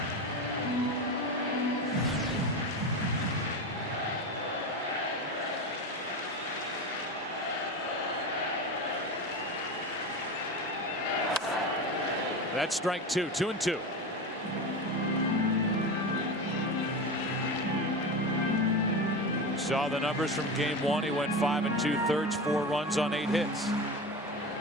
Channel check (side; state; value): both; normal; correlation 0.24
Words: That's strike 2. 2-2. Saw the numbers from game 1. He went 5 2/3, 4 runs on 8 hits.